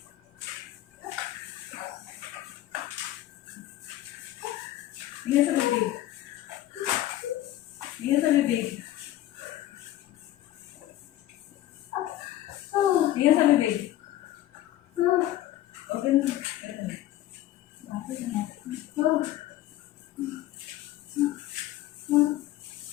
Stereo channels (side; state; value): right; quieter; 14.3 dB